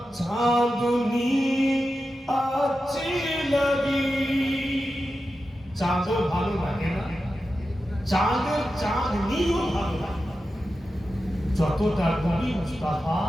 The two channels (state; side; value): normal; both; correlation 0.91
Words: चांदनी अच्छी लगी। चांदो ভালো লাগে না, চাঁদের চাঁদনিও ভালো লাগে যতটা নবী মুস্তাফা